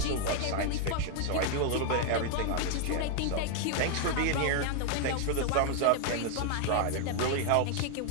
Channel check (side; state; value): both; different; correlation 0.00